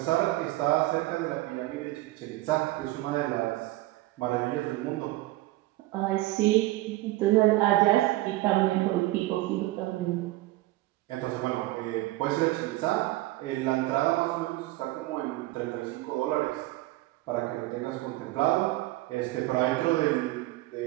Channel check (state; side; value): quieter; left; 18.1 dB